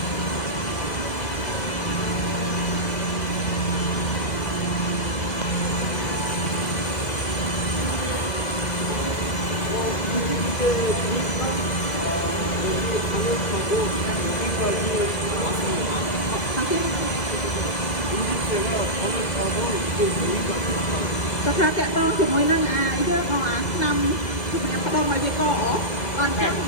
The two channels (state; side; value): late; right; 2.0 ms